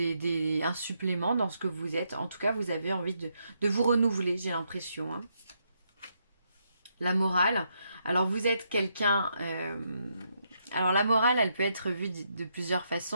supplément dans ce que vous êtes. En tout cas, vous avez envie de vous renouveler, j'ai l'impression. Hein. La morale. Alors, vous êtes quelqu'un... Alors la morale, elle peut être vue de plusieurs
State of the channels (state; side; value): inverted; both; correlation -0.78